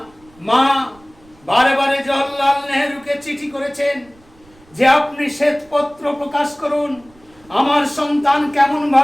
মা বারে বারে জওহরলাল নেহরুকে চিঠি করেছেন যে আপনি শ্বেতপত্র প্রকাশ করুন, আমার সন্তান কেমন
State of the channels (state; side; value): noise; right; rumble, 29 dB below the sound